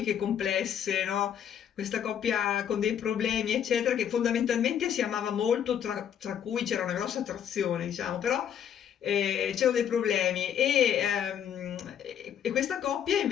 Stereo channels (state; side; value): quieter; right; 9.0 dB